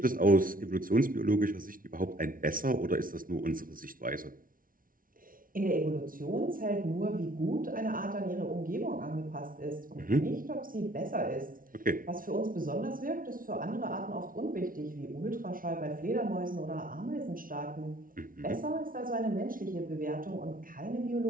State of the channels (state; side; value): late; left; 0.40 ms